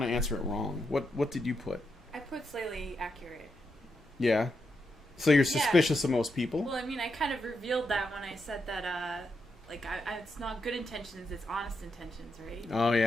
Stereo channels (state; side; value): normal; both; correlation 0.83